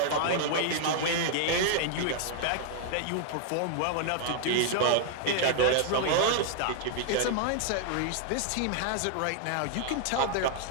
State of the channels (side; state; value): both; different; correlation 0.00